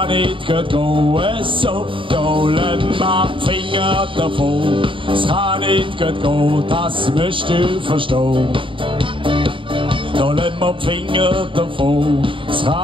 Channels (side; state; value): left; late; 0.25 ms